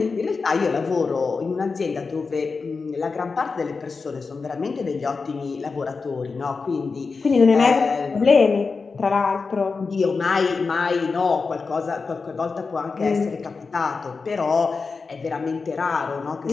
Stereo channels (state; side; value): quieter; right; 4.6 dB